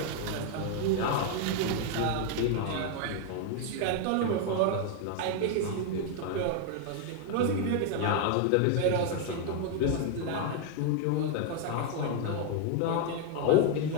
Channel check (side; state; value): both; different; correlation 0.00